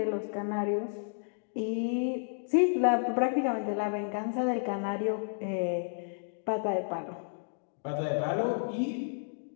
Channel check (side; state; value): right; silent; digital silence